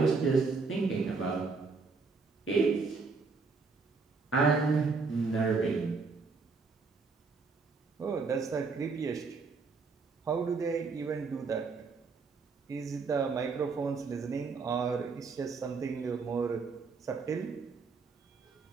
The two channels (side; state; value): left; quieter; 4.5 dB